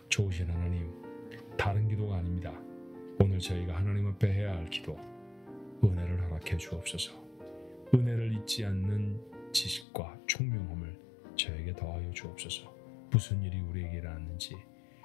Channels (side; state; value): right; drops out; at 9.9 s